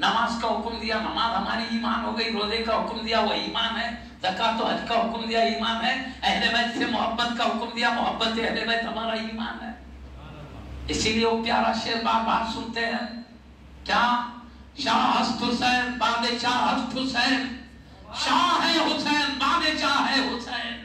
کا حکم دیا، نماز ہماری ایمان ہو گئی، روزے کا حکم دیا وہ ایمان ہے، زکوٰۃ و حج کا حکم دیا ایمان ہے، اہل بیت سے محبت کا حکم دیا، محبت اہل بیت ہمارا ایمان ہے۔ اسی لیے وہ پیارا شعر بار بار سنتے ہیں، کیا شاہ ہست حسین بادشاہ ہست حسین، شاہ ہے حسین بادشاہ ہے حسین،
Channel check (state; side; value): identical; both; correlation 1.00